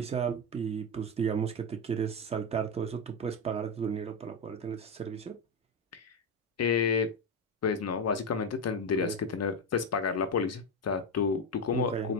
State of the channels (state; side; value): normal; both; correlation 0.10